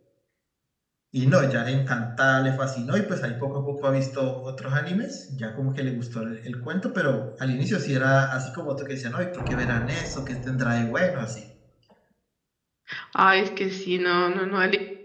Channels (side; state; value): both; identical; correlation 1.00